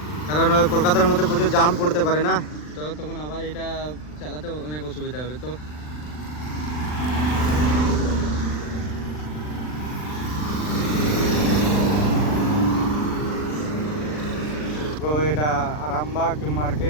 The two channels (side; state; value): right; late; 40 ms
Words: কারণ কলকাতার মধ্যে প্রচুর জাম পড়তে পারে না, তো তখন আবার এটা চালাতে অনেক অসুবিধা হবে। তো এটা আরামবাগ